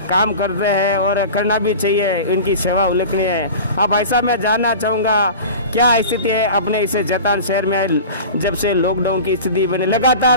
काम कर रहे हैं और करना भी चाहिए, इनकी सेवा उल्लेखनीय है। अब भाई साहब मैं जानना चाहूँगा क्या स्थिति है अपने इस जैतारण शहर में, जब से लॉकडाउन की स्थिति बनी,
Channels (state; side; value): inverted; both; correlation -0.35